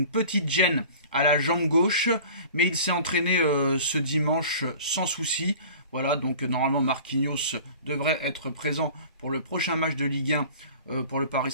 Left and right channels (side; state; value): both; inverted; correlation -0.43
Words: petite gêne à la jambe gauche. Mais il s'est entraîné ce dimanche sans souci. Voilà, donc normalement Marquinhos devrait être présent pour le prochain match de Ligue 1 pour le Paris